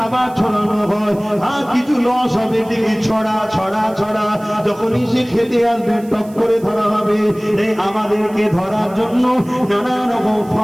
ছড়ানো হয়, আর কিছু লস হবে, দিকে ছড়া ছড়া ছড়া, যখনই সে খেতে আসবে টক করে ধরা হবে। এই আমাদেরকে ধরার জন্য নানা রকম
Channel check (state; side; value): noise; right; hiss, 25 dB below the sound